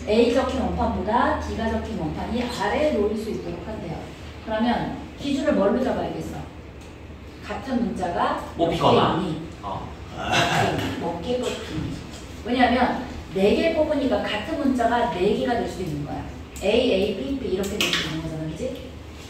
A 적힌 원판보다 D가 적힌 원판이 아래에 놓일 수 있도록 한대요. 그러면 기준을 뭘로 잡아야겠어? 같은 문자가 뽑히거나 몇 개 뽑히니. 왜냐하면 4개 뽑으니까 같은 문자가 4개가 될 수도 있는 거야. A, B, B 이렇게 될 수 있는 거잖아. 그지?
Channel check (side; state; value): both; identical; correlation 1.00